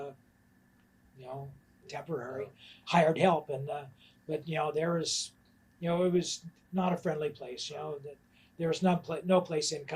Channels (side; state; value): both; identical; correlation 1.00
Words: temporary hired help, and but there was, it was not a friendly place. That there was no place in